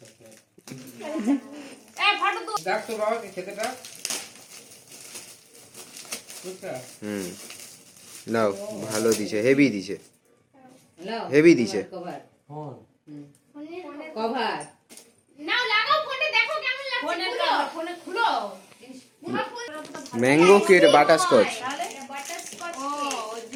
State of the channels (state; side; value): identical; both; correlation 1.00